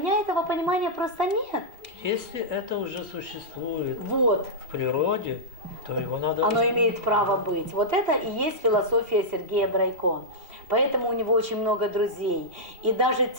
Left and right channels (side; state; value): left; late; 2.8 ms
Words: этого понимания просто нет. Если это уже существует вот в природе, то его надо... Оно имеет право быть. Вот это и есть философия Сергея Брайко. Поэтому у него очень много друзей. И даже